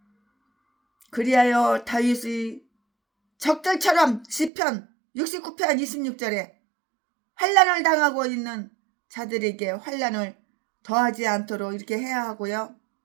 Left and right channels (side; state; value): left; drops out; at 4.5 s